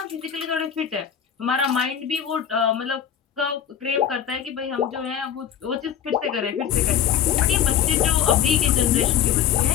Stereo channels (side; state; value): right; quieter; 9.2 dB